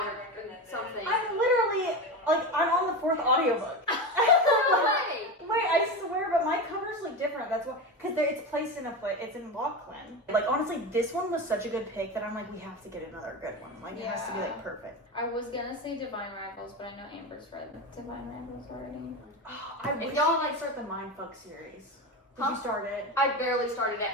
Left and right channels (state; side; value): normal; both; correlation 0.21